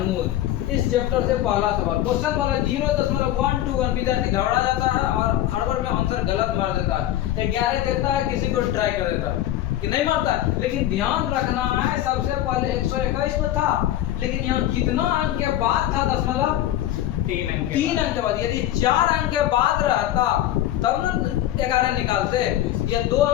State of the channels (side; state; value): right; quieter; 13.1 dB